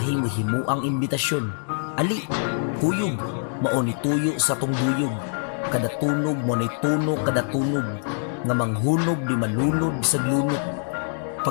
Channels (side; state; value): right; silent; digital silence